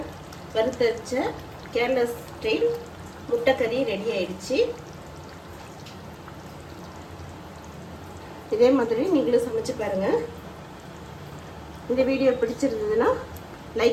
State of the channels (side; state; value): both; identical; correlation 1.00